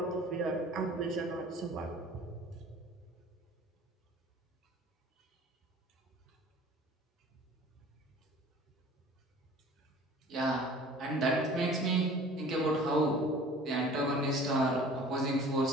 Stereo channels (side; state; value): both; normal; correlation 0.46